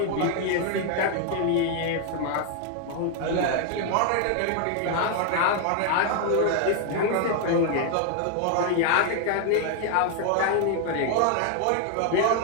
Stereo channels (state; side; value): different; both; correlation 0.00